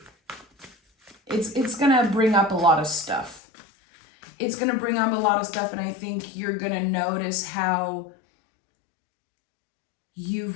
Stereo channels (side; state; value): right; drops out; at 3.4 s